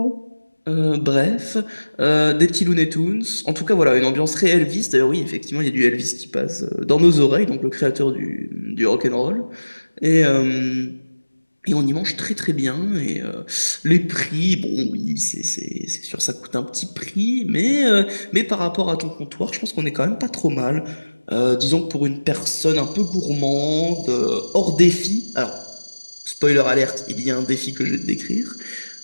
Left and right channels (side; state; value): both; inverted; correlation -1.00